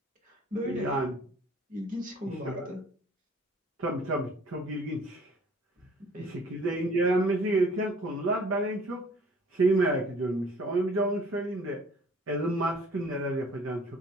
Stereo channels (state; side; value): normal; both; correlation 0.54